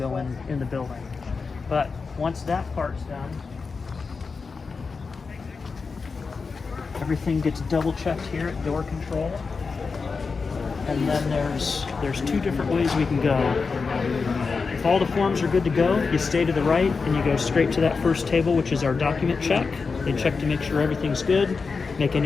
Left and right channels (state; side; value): quieter; right; 4.7 dB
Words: in the building. But once that part's done, everything gets double checked here at door control. And then there's two different ways we can go. If all the forms are good to go, you stay to the right and you go straight to that first table, which is our document check. They check to make sure everything's good, make